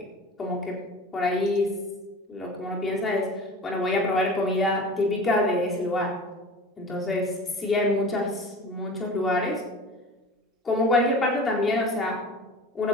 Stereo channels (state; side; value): normal; both; correlation 0.38